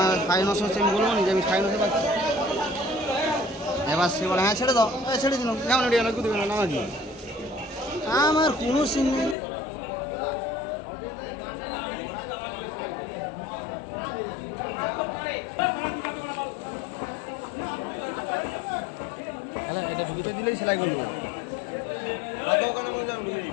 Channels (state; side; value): drops out; right; at 9.3 s